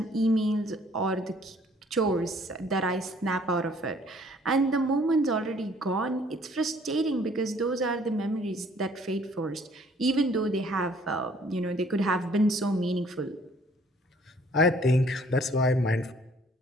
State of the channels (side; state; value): both; normal; correlation 0.59